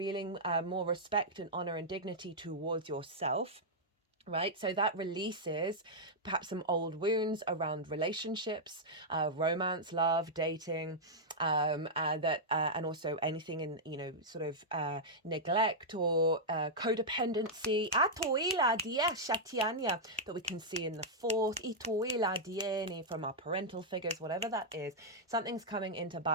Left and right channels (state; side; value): normal; both; correlation -0.07